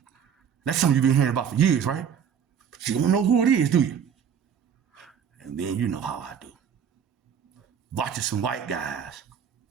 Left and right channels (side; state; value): left; quieter; 7.8 dB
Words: That's something you've been hearing about for years, right? But you don't know who it is, do you? And then you know how I do. Watching some white guys